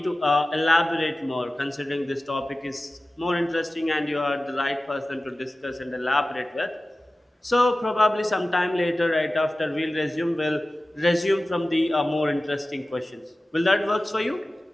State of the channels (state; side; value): normal; both; correlation 0.96